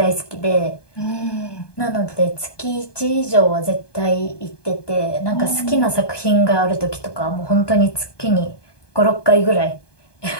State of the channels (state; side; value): late; right; 1.2 ms